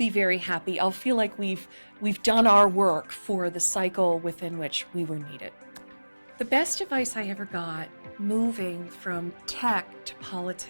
very happy. I'll feel like we've done our work for the cycle within which we were needed. The best advice I ever got moving from tech to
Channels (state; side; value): inverted; both; correlation -1.00